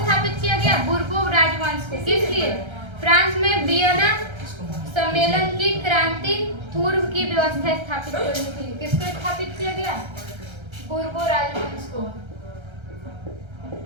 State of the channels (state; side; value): late; left; 1.3 ms